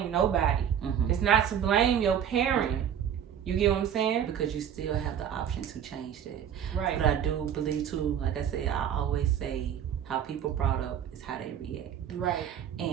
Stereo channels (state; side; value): quieter; left; 9.2 dB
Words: nobody. It's not to blame your parent. You get what I'm saying? Because you still have the option to change that. Right. But I do believe too, like I said, I always say how people brought up is how they react. Right.